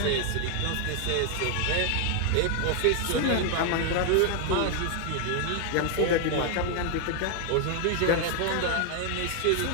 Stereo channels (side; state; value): both; different; correlation 0.00